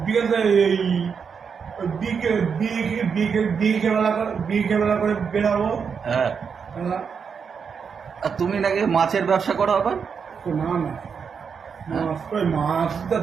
বিকেল এই বিকেলবেলা করে বেরাবো। হ্যাঁ। আর তুমি নাকি মাছের ব্যবসা করো আবার? না না, মাছ কই, মাছটা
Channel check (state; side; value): quieter; left; 6.3 dB